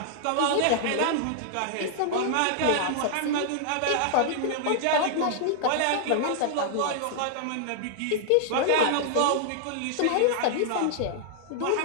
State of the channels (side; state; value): both; different; correlation -0.01